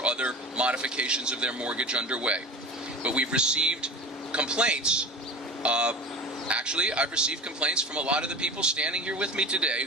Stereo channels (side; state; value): both; normal; correlation 0.33